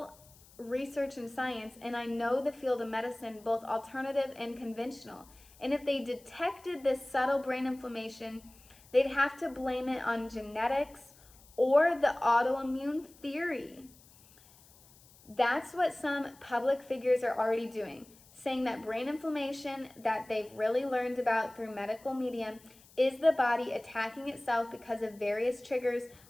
research and science, and I know the field of medicine, both alternative and conventional. And if they detected this subtle brain inflammation, they'd have to blame it on genetics or the autoimmune theory. That's what some public figures are already doing, saying that brain inflammation that they've really learned about through medical media is the body attacking itself because of various triggers,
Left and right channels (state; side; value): noise; left; hiss, 25 dB below the sound